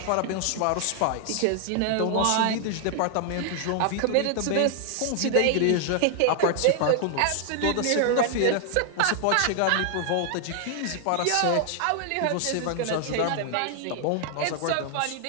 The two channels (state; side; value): different; both; correlation 0.00